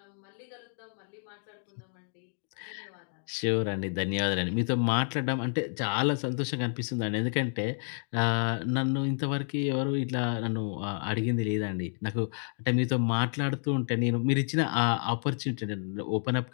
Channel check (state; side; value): silent; right; digital silence